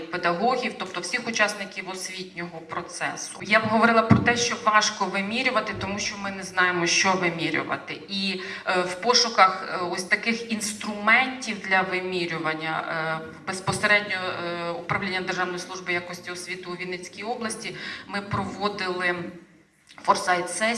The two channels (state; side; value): identical; both; correlation 1.00